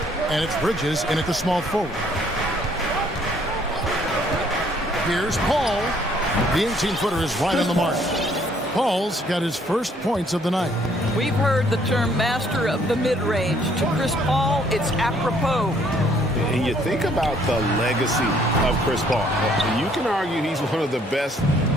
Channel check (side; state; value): both; normal; correlation 0.64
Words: And it's Bridges in at the small forward. Here's Paul. The 18-footer is right on the mark. Paul's got his first points of the night. We've heard the term master of the mid-range. To Chris Paul, it's apropos. And you think about the legacy of Chris Paul. You can argue he's one of the best